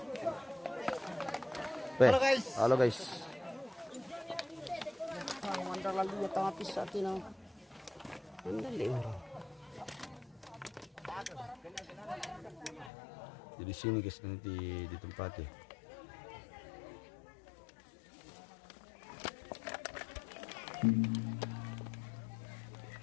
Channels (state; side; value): drops out; right; at 12.9 s